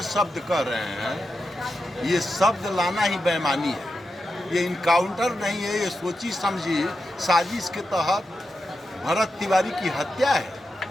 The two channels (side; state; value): both; normal; correlation 0.88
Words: शब्द कर रहे हैं, ये शब्द लाना ही बेईमानी है। ये इनकाउंटर नहीं है, ये सोची समझी साजिश के तहत भरत तिवारी की हत्या